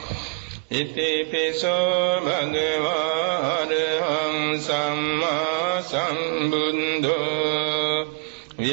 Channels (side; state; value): left; quieter; 33.2 dB